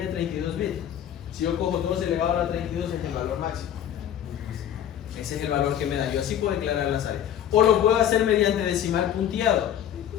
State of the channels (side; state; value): right; quieter; 10.3 dB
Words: 32 bits. Si yo cojo 2 elevado a la 32 es el valor máximo. Ese es el valor que me da. Yo así puedo declarar las áreas. O lo puedo hacer mediante decimal punteado,